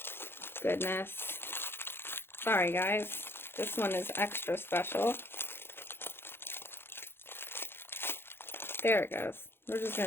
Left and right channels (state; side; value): late; right; 0.11 ms